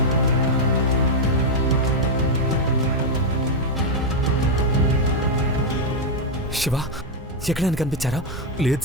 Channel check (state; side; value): normal; both; correlation 0.01